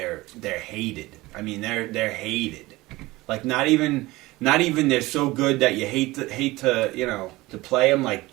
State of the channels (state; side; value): quieter; left; 20.0 dB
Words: hated. I mean, they're hated. Like not even they're so good that you hate to play them, like